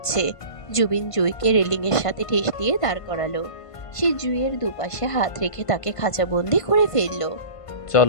জুবিন জুইকে রেলিংয়ের সাথে ঠেস দিয়ে দাঁড় করালো। সে জুইয়ের দুপাশে হাত রেখে তাকে খাঁচাবন্দি করে ফেললো।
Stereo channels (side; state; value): right; late; 1.5 ms